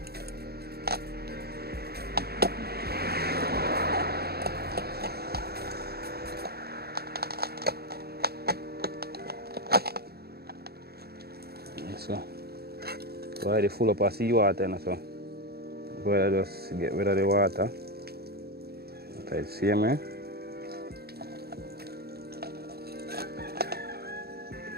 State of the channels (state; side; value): late; left; 0.46 ms